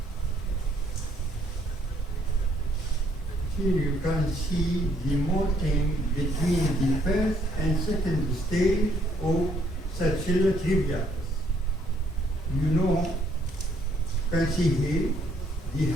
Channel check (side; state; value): both; normal; correlation 0.67